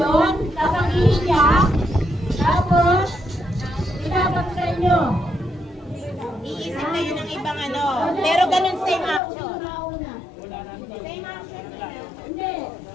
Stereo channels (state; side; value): drops out; right; at 9.2 s